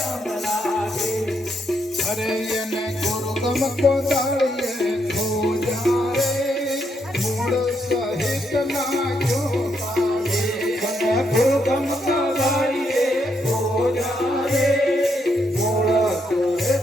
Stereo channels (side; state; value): both; normal; correlation 0.77